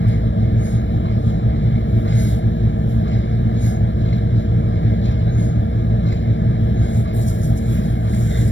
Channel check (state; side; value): late; right; 0.54 ms